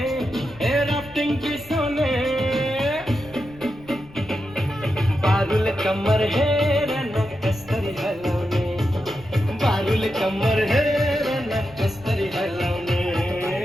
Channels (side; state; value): left; noise; rumble, 22 dB below the sound